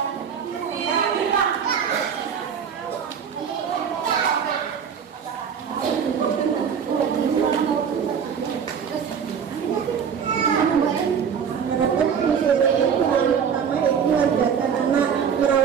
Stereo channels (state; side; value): quieter; left; 7.3 dB